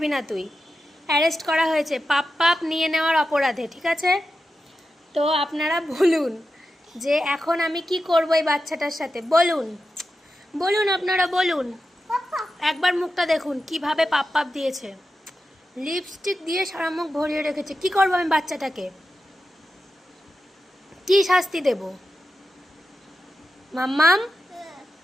না তুই। অ্যারেস্ট করা হয়েছে পাপ নিয়ে নেওয়ার অপরাধে, ঠিক আছে? তো আপনারা বলুন যে এখন আমি কি করব এই বাচ্চাটার সাথে, বলুন বলুন, আপনারা বলুন। একবার মুখটা দেখুন কিভাবে পাপ দিয়েছে, লিপস্টিক দিয়ে সারা মুখ ভরিয়ে রেখেছে। কি করবো আমি বাচ্চাটাকে? কি শাস্তি দেব? মাম্মাম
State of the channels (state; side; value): normal; both; correlation 0.90